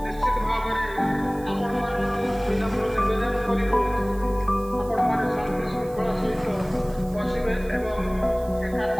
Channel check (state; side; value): noise; right; hiss, 23 dB below the sound